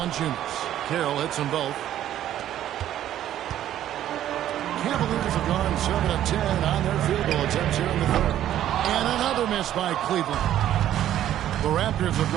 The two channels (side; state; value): left; quieter; 11.8 dB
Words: Carroll hits them both. Cavaliers have gone 7 of 10 on their field goal attempts here in the third. And another miss by Cleveland. The Raptors have